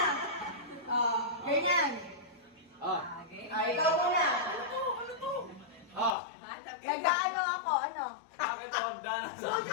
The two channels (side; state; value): right; drops out; at 6.1 s